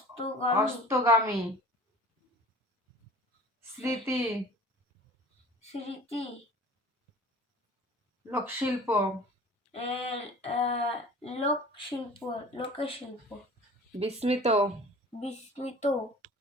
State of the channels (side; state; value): both; normal; correlation 0.44